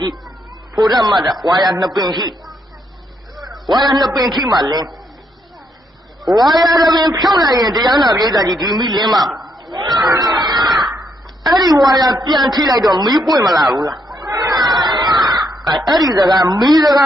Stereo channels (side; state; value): both; normal; correlation 0.75